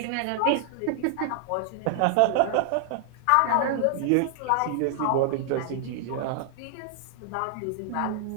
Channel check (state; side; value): different; both; correlation 0.00